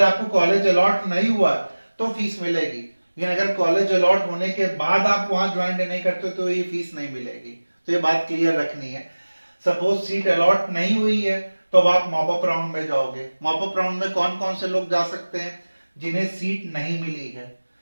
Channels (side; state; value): both; inverted; correlation -1.00